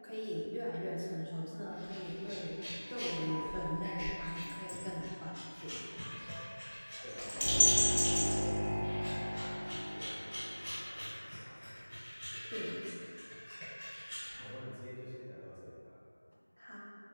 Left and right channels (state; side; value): inverted; both; correlation -1.00